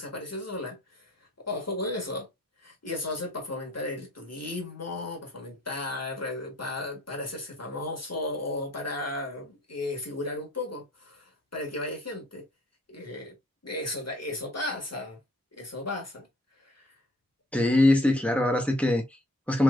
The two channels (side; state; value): both; normal; correlation 0.58